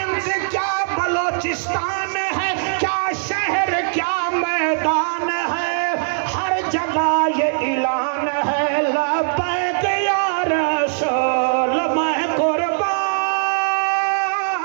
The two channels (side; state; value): left; silent; 64 dB below the other